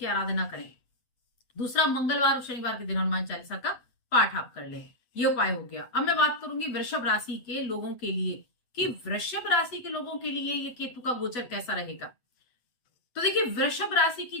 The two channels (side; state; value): right; late; 8.1 ms